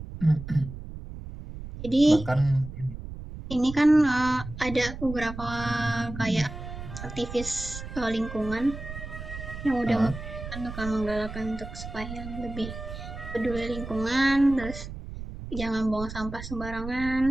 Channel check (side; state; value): right; noise; rumble, 10 dB below the sound